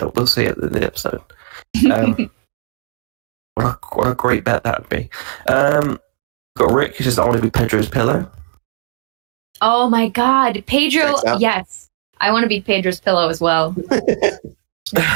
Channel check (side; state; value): left; silent; digital silence